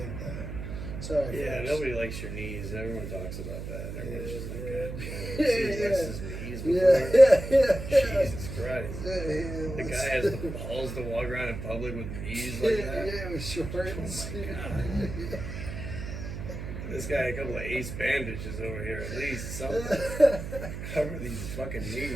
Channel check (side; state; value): right; noise; hum, 7 dB below the sound